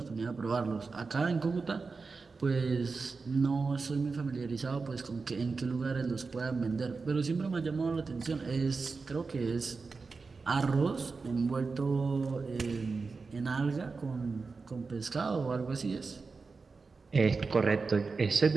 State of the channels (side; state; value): left; quieter; 4.4 dB